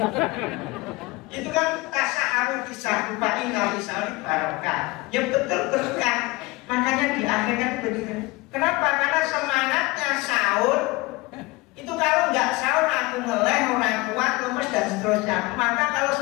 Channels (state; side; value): quieter; right; 22.5 dB